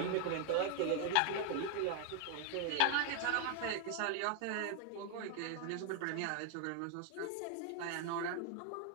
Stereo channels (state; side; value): different; both; correlation 0.00